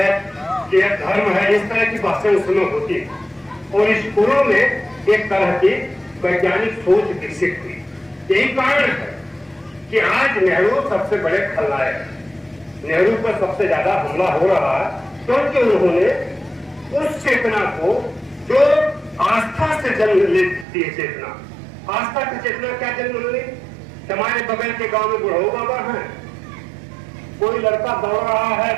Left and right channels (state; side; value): drops out; left; at 20.7 s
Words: कि यह धर्म है, इस तरह की बातें उसमें होती है। और स्कूलों में एक तरह की वैज्ञानिक सोच विकसित हुई। यही कारण है कि आज नेहरू सबसे बड़े खलनायक हैं। नेहरू पर सबसे ज्यादा हमला हो रहा है क्योंकि उन्होंने उस चेतना को जो आस्था से जन्म लेती है, चेतना, आस्था की चेतना क्या जन्म ली? हमारे बगल के गांव में बुढ़ऊ बाबा हैं, कोई लड़का दौड़ रहा है